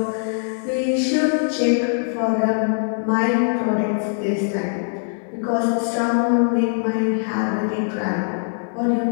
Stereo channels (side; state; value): right; silent; digital silence